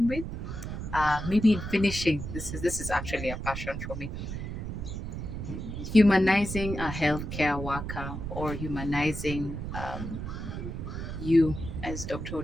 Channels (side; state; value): right; noise; rumble, 6 dB below the sound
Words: with. Maybe in finishing, this is actually a passion for me. Humanizing a healthcare worker, or humanizing you as Dr.